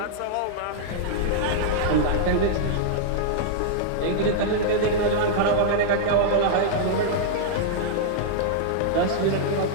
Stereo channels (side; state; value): both; different; correlation -0.02